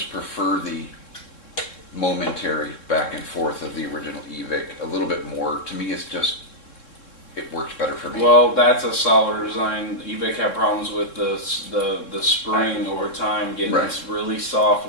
prefer the momentary back and forth of the original eVic a little bit more. To me, it's just, it works better for me. Well, that's a solider design. eVic had problems with the spring over time getting Right. really soft.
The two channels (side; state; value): right; late; 3.7 ms